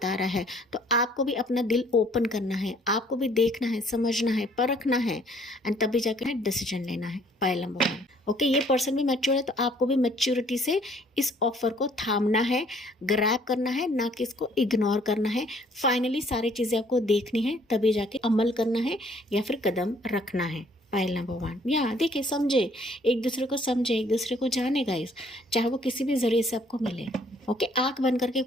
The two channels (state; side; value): normal; both; correlation 0.61